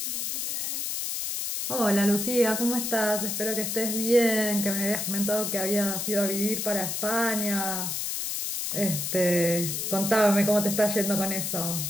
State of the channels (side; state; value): left; noise; hiss, 2 dB below the sound